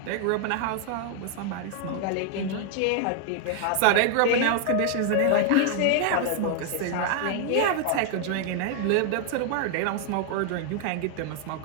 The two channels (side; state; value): both; different; correlation 0.00